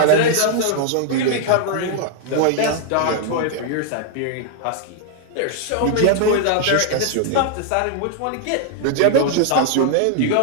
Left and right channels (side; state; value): both; different; correlation 0.00